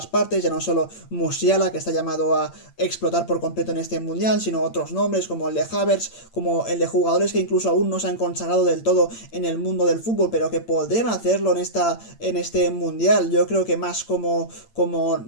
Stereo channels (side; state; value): right; late; 8.8 ms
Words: partes, ya no solo Musiala, que está llamado a explotar por completo en este mundial, sino otros nombres como el de Havertz, como el de jugadores que incluso aún no se han consagrado del todo en el mundo del fútbol, pero que podrían hacerlo en este mundial. Yo creo que más como